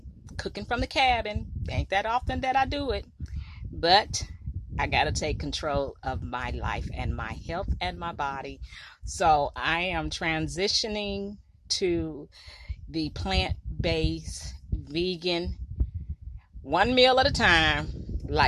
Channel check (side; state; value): both; identical; correlation 1.00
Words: cooking from the cabin. Ain't that often that I do it, but I gotta take control of my life and my health and my body. So I am transitioning to the plant-based vegan, one meal at a time